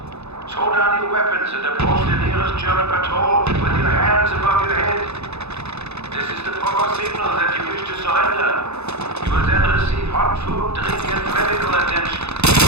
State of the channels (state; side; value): late; left; 0.80 ms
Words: Throw down your weapons and approach the nearest German patrol with your hands above your head. This is the proper signal that you wish to surrender. You will then receive hot food, drink, and medical attention.